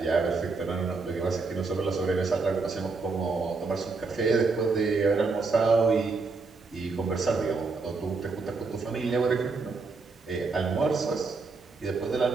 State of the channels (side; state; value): left; quieter; 4.2 dB